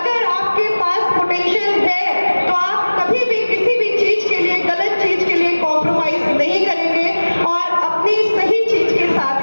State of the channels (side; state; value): both; inverted; correlation -1.00